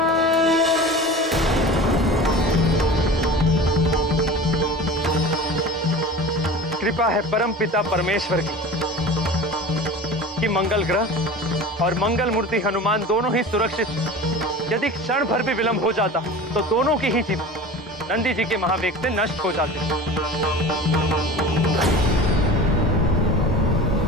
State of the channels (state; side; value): normal; both; correlation 0.36